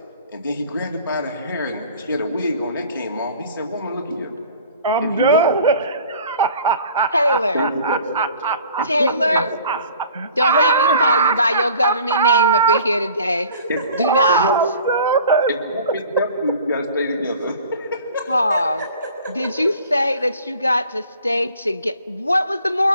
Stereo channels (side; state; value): both; inverted; correlation -0.48